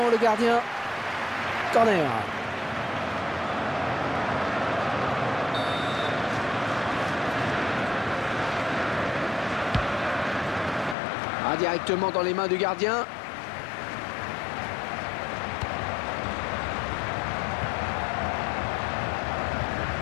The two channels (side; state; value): right; drops out; at 11.0 s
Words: le gardien. Corner. Ah, directement dans les mains du gardien.